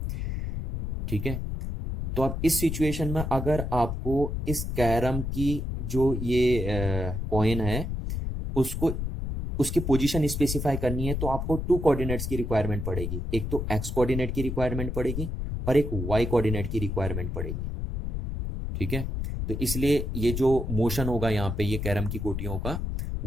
ठीक है। तो अब इस सिचुएशन में अगर आपको इस कैरम की जो ये कॉइन है उसको उसकी पोजीशन स्पेसिफाई करनी है, तो आपको टू कोऑर्डिनेट्स की रिक्वायरमेंट पड़ेगी, एक तो एक्स कोऑर्डिनेट की रिक्वायरमेंट पड़ेगी और एक वाई कोऑर्डिनेट की रिक्वायरमेंट पड़ेगी, ठीक है। तो इसलिए ये जो मोशन होगा यहाँ पे ये कैरम की गोटियों का,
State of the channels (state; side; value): noise; left; rumble, 3 dB below the sound